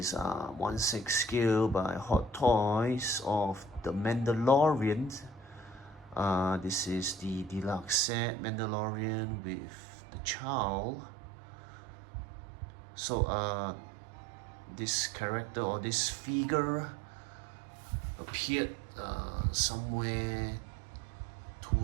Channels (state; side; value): drops out; left; at 8.0 s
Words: 1/6 scale by Hot Toys of the Mandalorian. This is the deluxe set Mandalorian with the child. So this character or this figure appeared somewhere